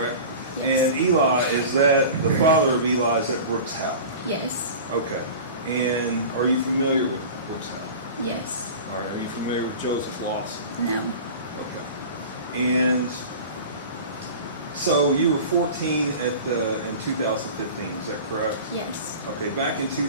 Yes. And Eli, is that the father of Eli? Is that Brooks Houck? Yes. Okay. And are you familiar with Brooks Houck? Yes. All right. Are you familiar with Joseph Lawson? No. Okay. And so you were 14 in 2015. Is that correct? Yes. Okay. Back in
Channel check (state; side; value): inverted; both; correlation -0.36